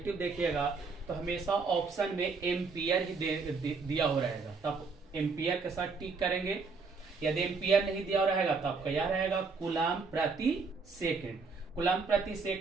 देखिएगा तो हमेशा ऑप्शन में एम्पियर ही दिया हो रहेगा, तब एम्पियर के साथ टिक करेंगे। यदि एम्पियर नहीं दिया रहेगा तो आपका यह रहेगा कूलम प्रति सेकेंड। कूलम प्रति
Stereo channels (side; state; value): left; quieter; 4.5 dB